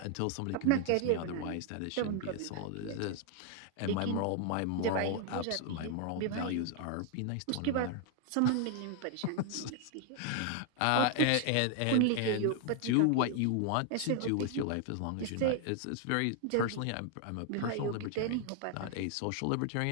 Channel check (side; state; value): both; different; correlation 0.00